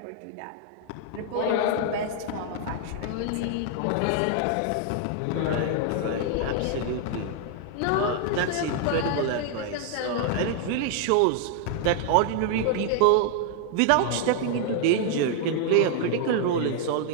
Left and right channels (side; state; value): both; different; correlation 0.00